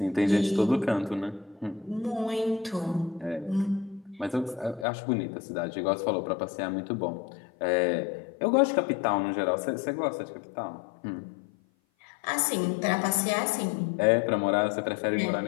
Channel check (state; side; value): drops out; right; at 4.9 s